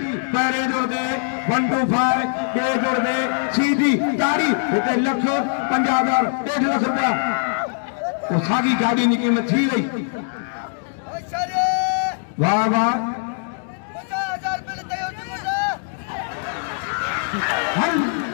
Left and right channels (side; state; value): right; silent; digital silence